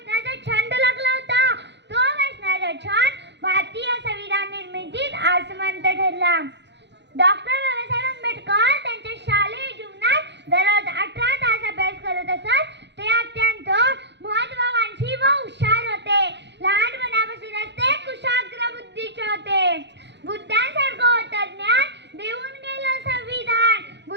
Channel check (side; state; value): left; late; 0.51 ms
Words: छंद लागला होता. तो वाचनाचा छंद भारतीय संविधान निर्मितीत आसमंत ठरला. डॉक्टर बाबासाहेब आंबेडकर त्यांच्या शालेय जीवनात दररोज 18 तास अभ्यास करत असत. ते अत्यंत महत्त्वाकांक्षी व हुशार होते. लहानपणापासूनच ते कुशाग्र बुद्धीचे होते. बुद्धांसारखं होतं ज्ञान देऊन गेलं संविधान.